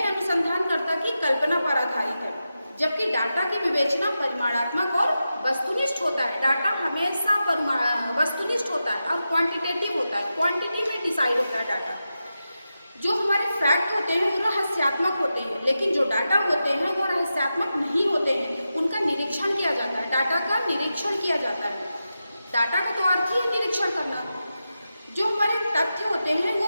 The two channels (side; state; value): both; inverted; correlation -0.91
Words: अनुसंधानकर्ता की कल्पना पर आधारित है, जबकि डाटा की विवेचना परिमाणात्मक और वस्तुनिष्ठ होता है। डाटा हमेशा वस्तुनिष्ठ होता है और क्वांटिटेटिव होता है, क्वांटिटी में डिसाइड होता है डाटा। जो हमारे फैक्ट होते हैं वो रहस्यात्मक होते हैं, लेकिन जो डाटा होते हैं वो रहस्यात्मक नहीं होते हैं, उनका निरीक्षण किया जाता है, डाटा का निरीक्षण किया जाता है। डाटा का तो अर्थ ही है निरीक्षण करना। जो हमारे तथ्य होते हैं वो